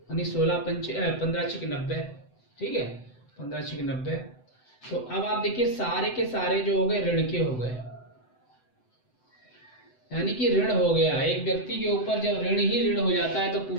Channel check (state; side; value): late; right; 7.9 ms